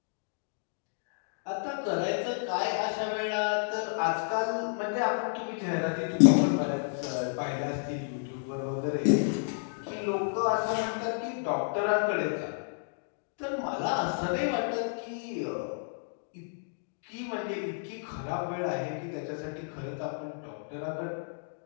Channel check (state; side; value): silent; right; digital silence